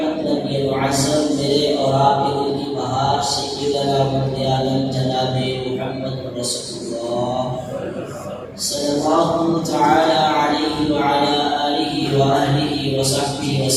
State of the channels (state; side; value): identical; both; correlation 1.00